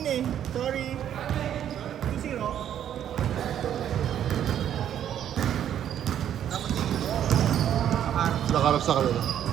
eh. Sorry. 2-0. Nakarap sa kanila.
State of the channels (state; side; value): quieter; left; 10.2 dB